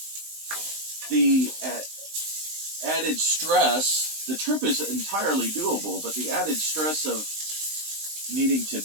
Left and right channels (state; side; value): late; left; 19 ms